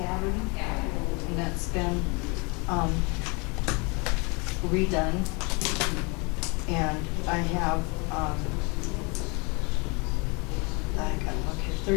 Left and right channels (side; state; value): right; quieter; 30.2 dB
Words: and that's been, redone. And I have, I gotta look here,